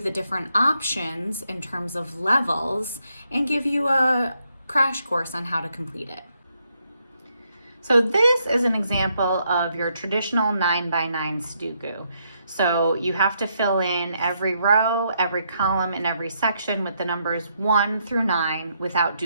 different options in terms of levels and give you a crash course on how to complete it. So this is an example of your traditional 9x9 Sudoku. So you have to fill in every row, every column, and every section with the numbers 1 through 9 without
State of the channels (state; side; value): inverted; both; correlation -0.77